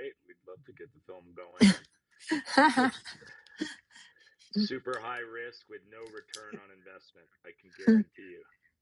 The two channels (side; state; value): both; identical; correlation 1.00